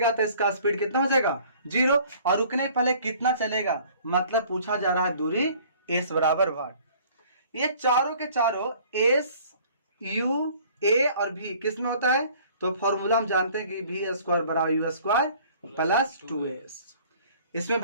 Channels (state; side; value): inverted; both; correlation -0.53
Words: तो इसका स्पीड कितना हो जाएगा 0, और रुकने पहले कितना चलेगा, मतलब पूछा जा रहा है दूरी s बराबर वाट। ये चारों के चारों s u a और v किस में होता है, तो फॉर्मूला हम जानते हैं कि v स्क्वायर बराबर u स्क्वायर प्लस 2s। इसमें